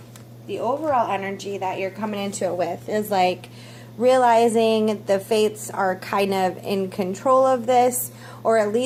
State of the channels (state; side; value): identical; both; correlation 1.00